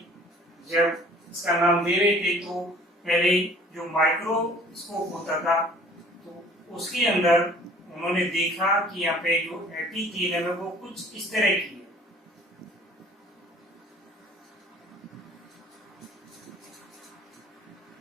जब इसका नाम दे रहे थे तो पहले जो माइक्रोस्कोप होता था तो उसके अंदर उन्होंने देखा कि यहाँ पे जो एपिथेलियम है वो कुछ इस तरह की है।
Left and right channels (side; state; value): both; normal; correlation 0.51